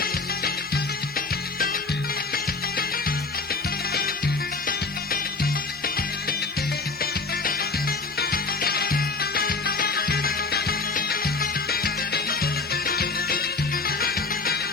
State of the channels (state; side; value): quieter; right; 3.9 dB